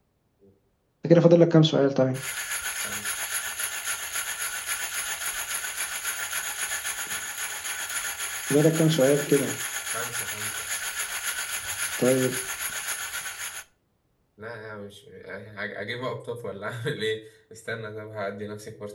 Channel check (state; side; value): identical; both; correlation 1.00